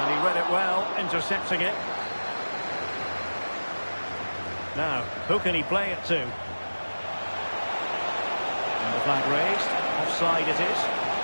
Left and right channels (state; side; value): inverted; both; correlation -1.00